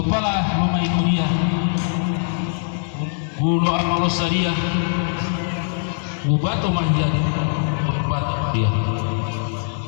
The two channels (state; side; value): silent; right; 65 dB below the other